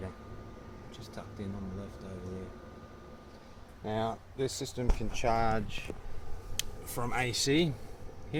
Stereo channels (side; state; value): both; identical; correlation 1.00